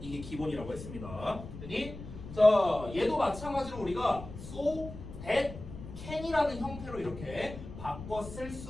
이게 기본이라고 했습니다. 됐니? 자, 얘도 마찬가지로 우리가 so, that, can이라는 형태로 이렇게 바꿔 쓸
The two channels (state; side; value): noise; left; rumble, 12 dB below the sound